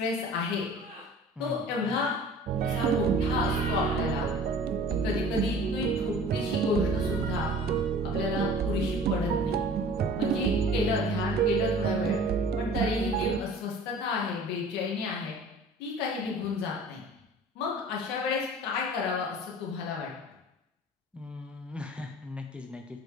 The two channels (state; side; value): normal; both; correlation 0.45